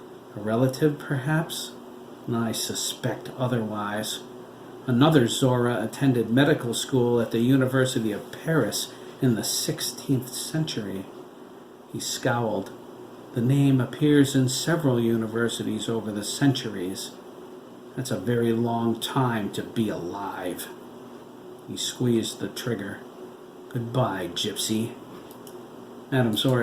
A relative, perhaps? I suspect otherwise. Another Zora attended medical school at the University of Paris in the 16th century. He scowled. "The name appears in several universities over the centuries. That's a very long time to be alive." He squeezed the trigger. "Goodbye, gypsy." Madame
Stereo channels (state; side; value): identical; both; correlation 1.00